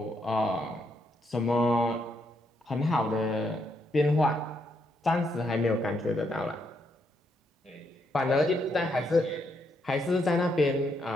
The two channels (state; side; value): normal; both; correlation 0.77